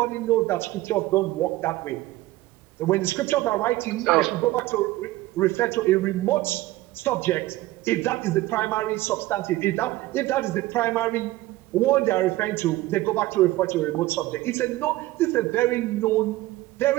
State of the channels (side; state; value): left; quieter; 17.4 dB